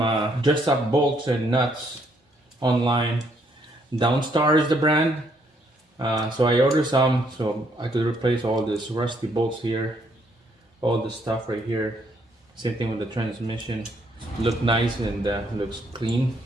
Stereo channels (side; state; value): both; normal; correlation 0.70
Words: dress up bolts and nuts online. Downstar is the brand. So I ordered some, so I could replace all this rusty bolts here, all this stuff right here. Same thing with the transmission. Look nice and looks clean.